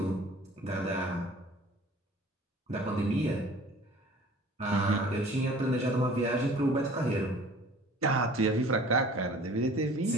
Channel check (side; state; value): both; normal; correlation 0.48